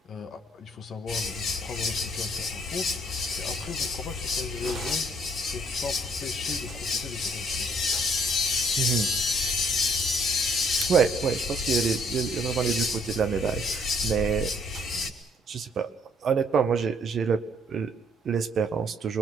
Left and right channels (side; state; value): both; normal; correlation 0.64